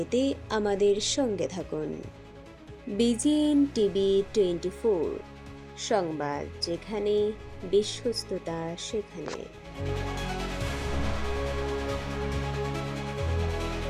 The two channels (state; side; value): identical; both; correlation 1.00